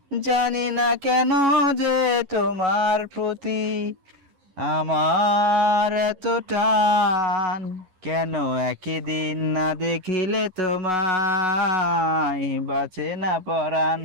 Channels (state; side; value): late; left; 11 ms